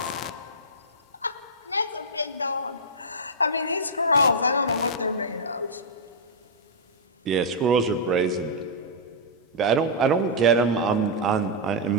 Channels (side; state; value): both; normal; correlation -0.09